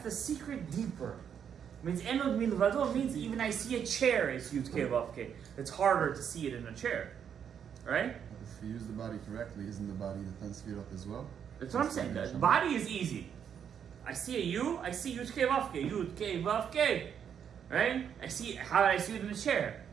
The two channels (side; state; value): left; quieter; 8.1 dB